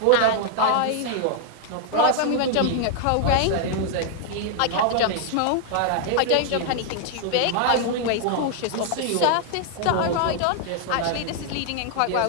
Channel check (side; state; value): both; different; correlation 0.00